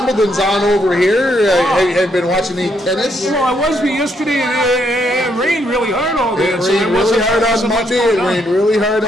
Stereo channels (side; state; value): both; normal; correlation 0.74